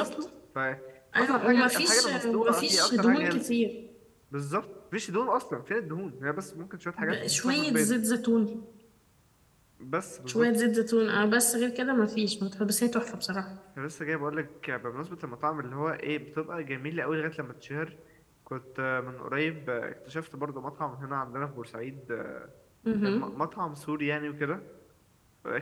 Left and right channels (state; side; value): identical; both; correlation 1.00